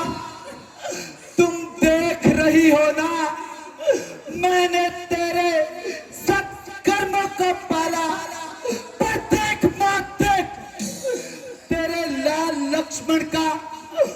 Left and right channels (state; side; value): identical; both; correlation 1.00